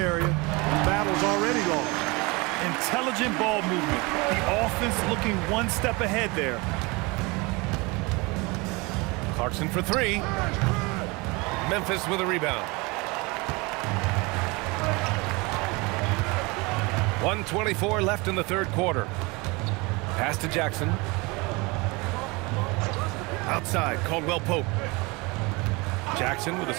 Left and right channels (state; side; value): quieter; left; 26.1 dB